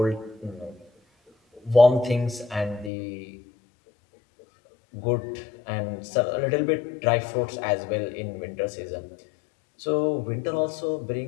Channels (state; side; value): drops out; right; at 2.9 s